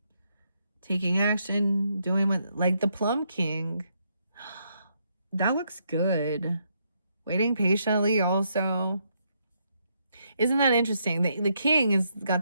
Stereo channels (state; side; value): inverted; both; correlation -0.76